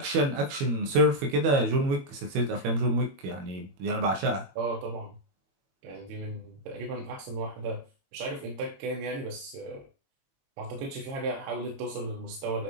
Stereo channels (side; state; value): left; late; 22 ms